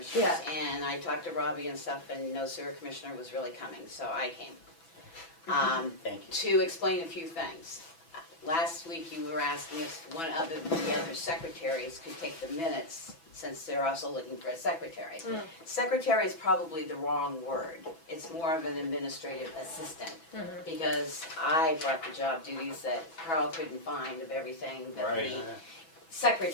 Yeah. and I talked to Robbie and stuff, and no sewer commissioner was really coming, so I came. Thank you. To explain a few things. Last week you were asking if one of the other secretaries could take the minutes, since they're also looking for a secretary. Secretary is probably the wrong word. It's more of an administrative assistant, because I brought the job duties that Carl couldn't find of everything that the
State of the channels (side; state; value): right; late; 6.1 ms